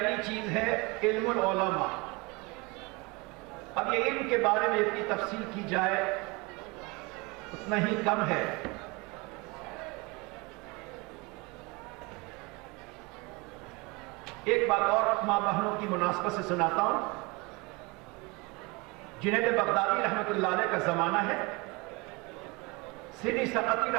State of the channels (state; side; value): quieter; left; 26.4 dB